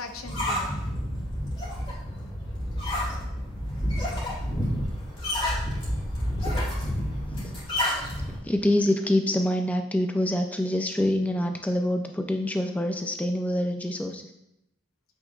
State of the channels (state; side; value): normal; both; correlation 0.79